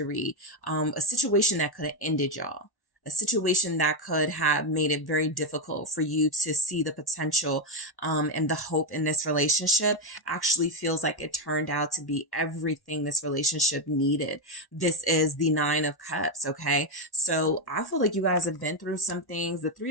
a situation that could have ended y'all. A situation that could have made it very difficult for you to see the potential and the hope in this relationship actually feels like it turned out to be everything this relationship needed. This is the Nine of Cups, okay? So I feel like you guys have been through some things. The Three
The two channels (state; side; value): late; right; 1.1 ms